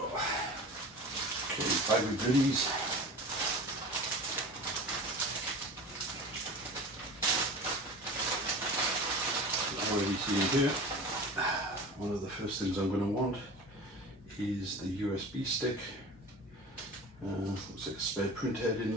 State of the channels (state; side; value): normal; both; correlation 0.35